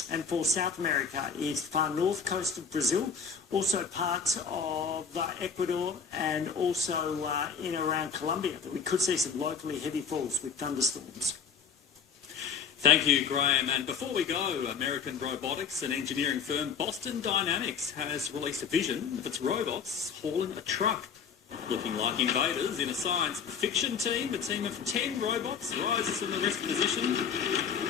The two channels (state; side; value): quieter; right; 6.4 dB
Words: And for South America, it's the far north coast of Brazil, also parts of Ecuador, and also in around Colombia that we could see some locally heavy falls with thunderstorms. Thank you, Graham. And before we go, American robotics and engineering firm Boston Dynamics has released a vision of its robots hauling a truck. Looking like invaders in a science fiction team, a team of 10 robots rises from the rest position